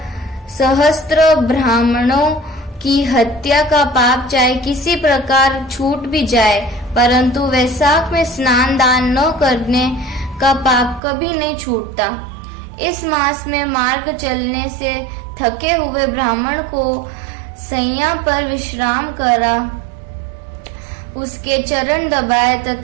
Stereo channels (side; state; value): left; drops out; at 11.0 s